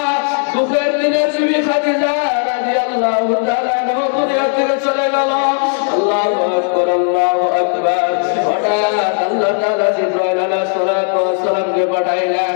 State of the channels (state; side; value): silent; right; 62 dB below the other